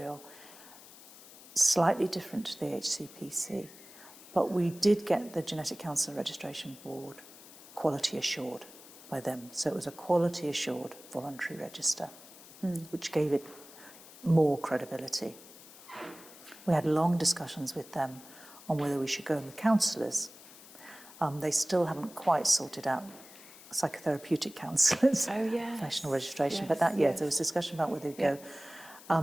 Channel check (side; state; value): left; noise; hiss, 19 dB below the sound